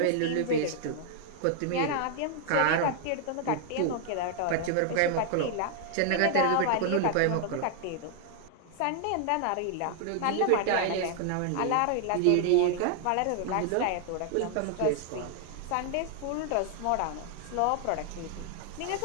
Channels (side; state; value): both; different; correlation 0.00